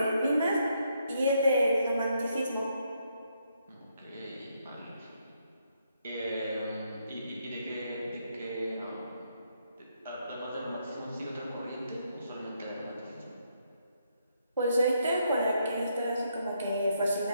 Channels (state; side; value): inverted; both; correlation -0.76